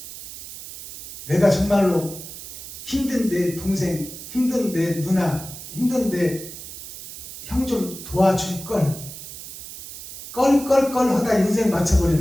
내가 정말로 힘든 내 동생, 힘든 내 누나, 힘든 내 형 좀 도와줄걸. 껄 하다 인생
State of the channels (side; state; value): right; noise; hiss, 12 dB below the sound